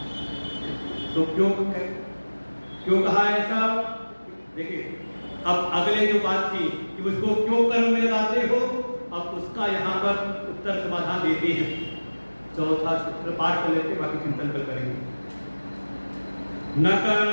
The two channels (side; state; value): both; inverted; correlation -1.00